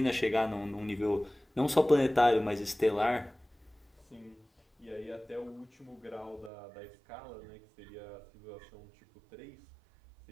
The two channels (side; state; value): left; drops out; at 6.5 s